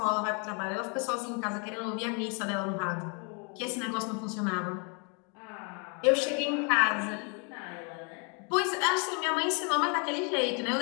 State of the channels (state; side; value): quieter; right; 36.6 dB